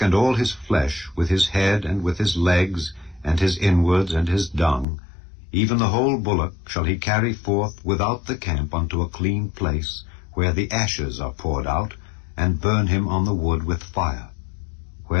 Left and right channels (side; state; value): right; drops out; at 4.9 s